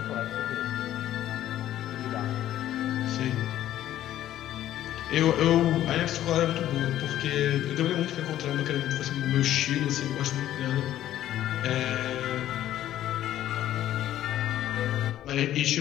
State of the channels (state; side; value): quieter; right; 12.6 dB